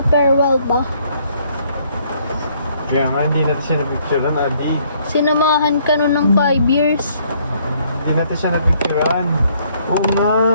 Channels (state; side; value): inverted; both; correlation -0.65